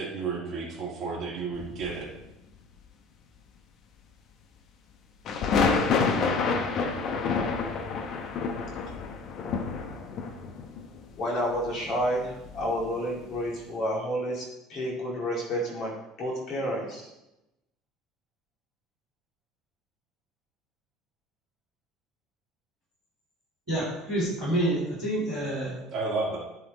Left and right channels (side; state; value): both; normal; correlation 0.46